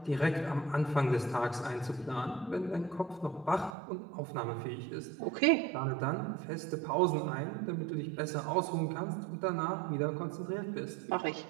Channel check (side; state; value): left; drops out; at 3.8 s